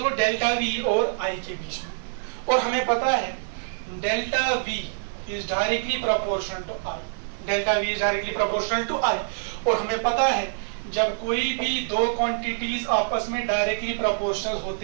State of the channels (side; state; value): left; silent; digital silence